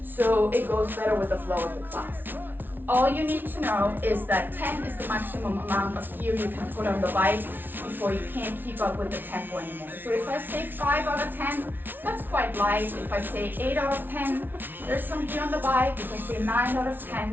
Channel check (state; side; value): late; left; 0.094 ms